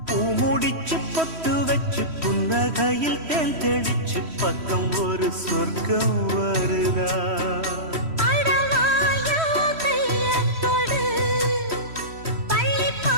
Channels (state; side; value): late; left; 3.1 ms